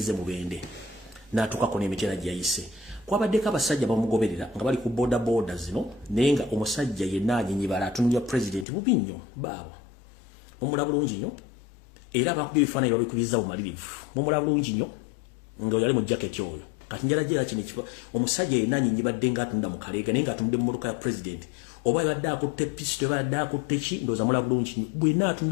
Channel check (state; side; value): drops out; right; at 8.7 s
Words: mubende n'atuukako n'emitera gyayise kwabaddeko abasajja bamugoberera nga bali ku boda zino naye nga omusajja yenna anyinyibala atunulira president bubi nnyo baabo mumula bulungi nnyo era abakubye ebifaananyi babikubiza bumalirivu mumula bulungi nnyo nga yali mu jaketi oyo kati njala jera kino omusajja yenna anyinyibadde ng'atunda mu kaleega naye ng'atunda mu mmotoka ya president oba yabadde akutte pisto yabadde akutte ki ndowooza mula bulungi nnyo bwenna